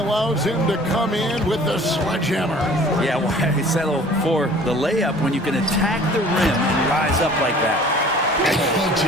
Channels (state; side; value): normal; both; correlation 0.49